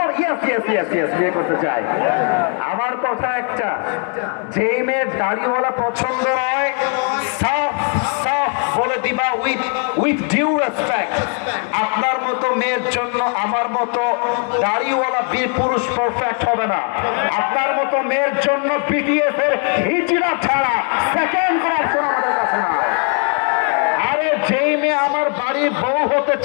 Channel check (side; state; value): right; quieter; 39.4 dB